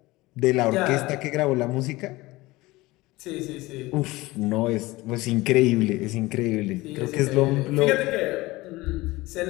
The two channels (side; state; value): right; quieter; 20.3 dB